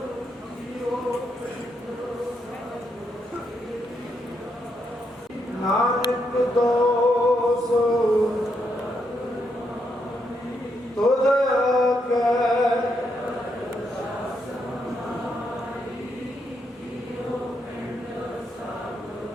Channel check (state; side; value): normal; both; correlation 0.79